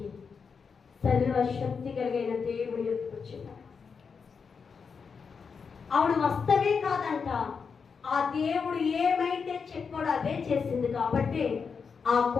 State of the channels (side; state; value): right; quieter; 5.7 dB